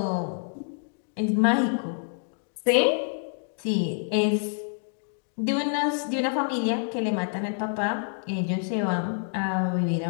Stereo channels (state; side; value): silent; right; digital silence